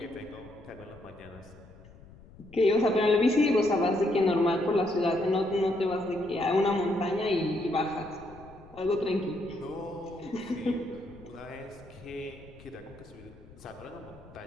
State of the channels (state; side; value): noise; left; rumble, 21 dB below the sound